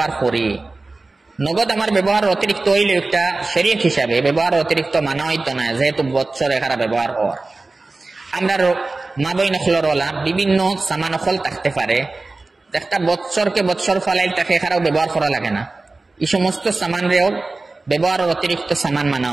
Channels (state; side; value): quieter; left; 3.4 dB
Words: করি, নগদ আমার ব্যবহার অতিরিক্ত হইলে একটা শরীয়ত হিসাবে ব্যবহার অতিরিক্ত মানা হইতো না, যেহেতু বৎসর এখানে ব্যবহার হওয়ার। আমরা মা বইন হলরওয়ালা বিভিন্ন সামান হল থাকতে পারে, একটা বৎসরকে বৎসর ফলাইল তাকে এখানেও ব্যবহার করা লাগে না, এই সমস্ত সামানরেও ব্যবহারের অতিরিক্ত সামান মানা